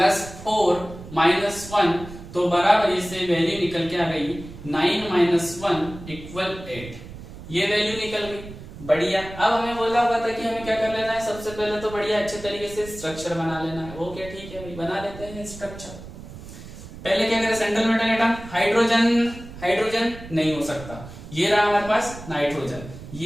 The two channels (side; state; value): right; noise; rumble, 14 dB below the sound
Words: 4 - 1, तो बराबर से वैल्यू निकल के आ गई 9 - 1 = 8, ये वैल्यू निकल गई, बढ़िया। अब हमें बोला हुआ था कि हमें क्या कर लेना है, सबसे पहले तो बढ़िया अच्छे तरीके से स्ट्रक्चर बना लेना है। वो क्या, ठीक है भाई बना लेते हैं स्ट्रक्चर। पहले क्या करें, सेंट्रल मेटल एटम, हाइड्रोजन नहीं हो सकता, ये रहा हमारे पास नाइट्रोजन,